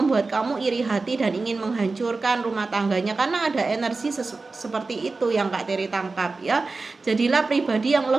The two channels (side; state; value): left; quieter; 3.8 dB